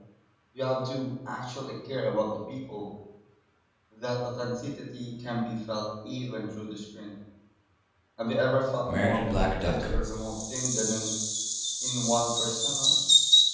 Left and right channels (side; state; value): both; identical; correlation 1.00